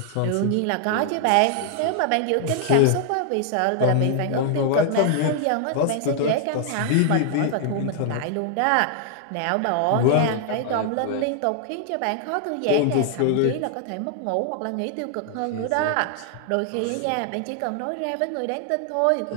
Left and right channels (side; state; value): both; different; correlation 0.00